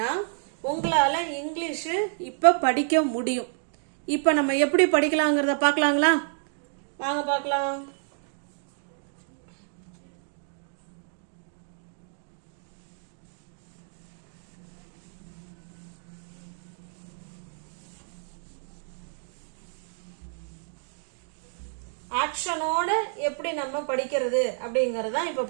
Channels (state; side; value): silent; left; digital silence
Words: உங்களால் இங்கிலீஷு இப்போ படிக்க முடியும். இப்போ நம்ம எப்படி படிக்கலாங்கிறத பார்க்கலாங்களா? வாங்க பார்க்கலாம். ஆக்ஷனோட எப்படி நம்ம படிக்கிறது அப்படிங்கறத இப்ப